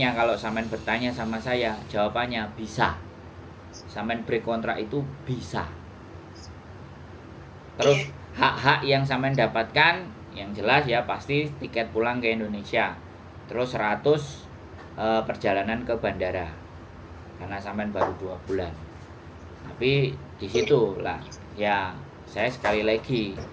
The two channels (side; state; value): both; identical; correlation 1.00